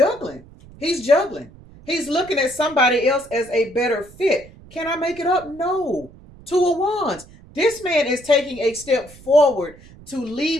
He's juggling. He's looking at somebody else as a better fit. Can I make it up? No. 2 of Wands. This man is taking a step forward to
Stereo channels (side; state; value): right; noise; rumble, 22 dB below the sound